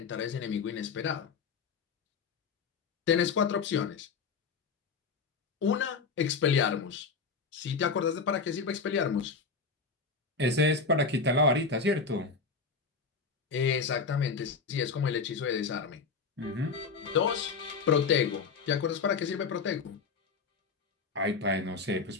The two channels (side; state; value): right; quieter; 4.9 dB